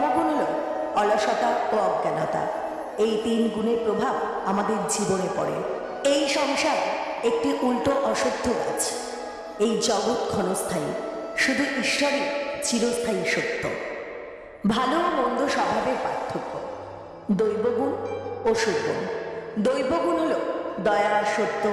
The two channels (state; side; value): identical; both; correlation 1.00